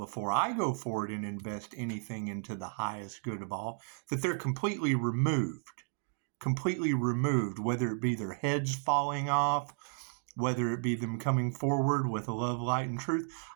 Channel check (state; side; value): silent; left; 56 dB below the other